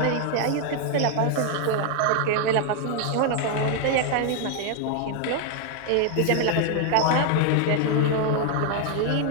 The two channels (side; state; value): both; different; correlation 0.00